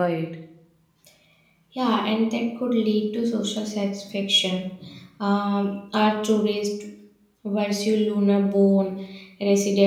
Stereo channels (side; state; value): both; identical; correlation 1.00